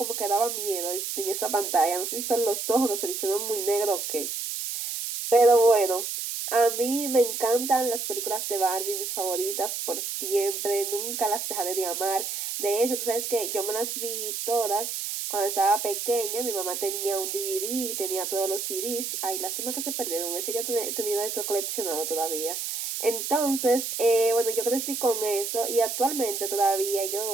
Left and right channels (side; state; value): right; noise; hiss, 4 dB below the sound